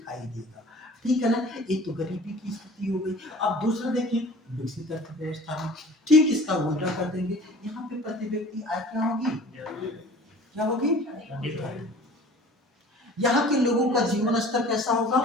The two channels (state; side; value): normal; both; correlation 0.46